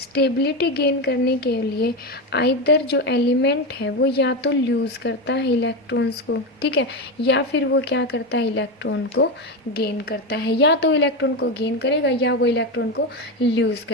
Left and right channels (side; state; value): both; normal; correlation 0.14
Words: गेन करने के लिए आइदर जो एलिमेंट है वो या तो लूज करता है इलेक्ट्रॉन्स को. ठीक है. या फिर वो क्या करता है? इलेक्ट्रॉन को गेन करता है. या तो इलेक्ट्रॉन को गेन करेगा या वो इलेक्ट्रॉन को लूज